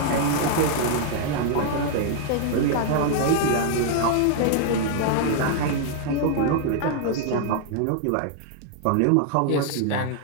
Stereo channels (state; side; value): different; both; correlation 0.00